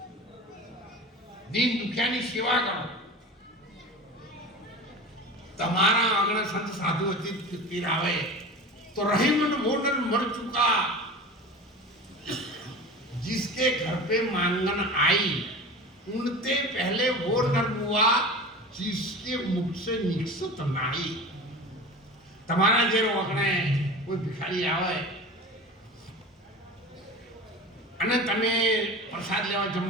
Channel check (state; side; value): normal; both; correlation 0.33